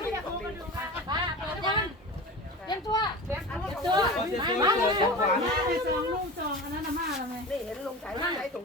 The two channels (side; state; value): both; normal; correlation 0.32